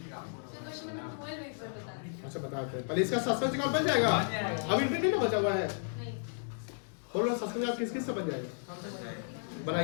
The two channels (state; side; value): silent; right; digital silence